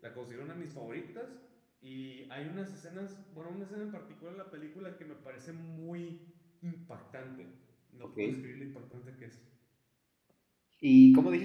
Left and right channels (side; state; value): both; identical; correlation 1.00